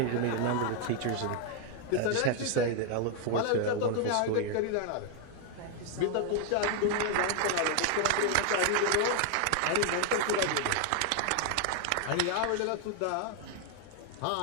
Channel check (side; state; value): both; different; correlation 0.01